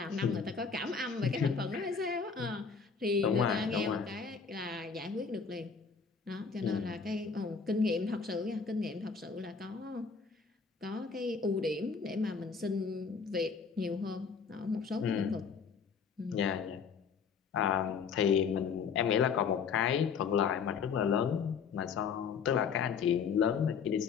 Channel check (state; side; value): quieter; right; 5.8 dB